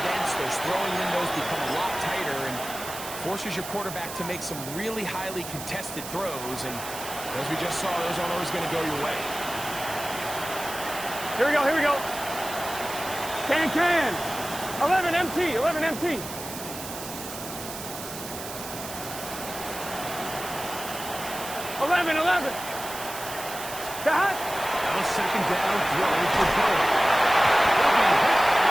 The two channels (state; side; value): noise; right; hiss, 10 dB below the sound